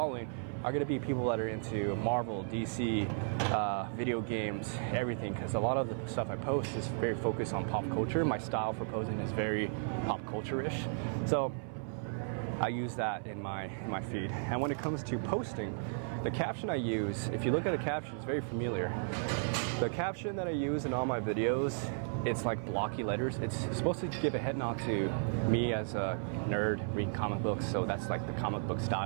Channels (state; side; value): silent; left; 55 dB below the other